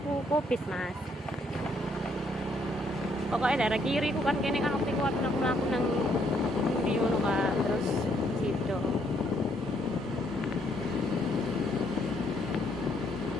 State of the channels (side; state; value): both; normal; correlation 0.70